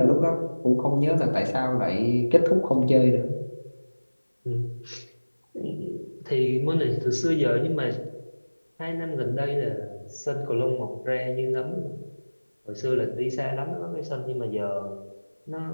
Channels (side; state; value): both; inverted; correlation -1.00